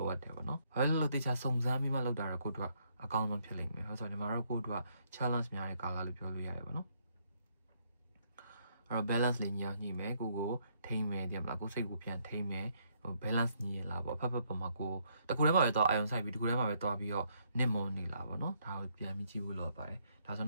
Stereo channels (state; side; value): inverted; both; correlation -0.72